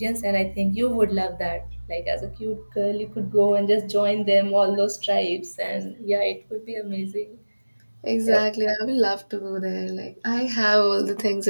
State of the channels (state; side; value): inverted; both; correlation -1.00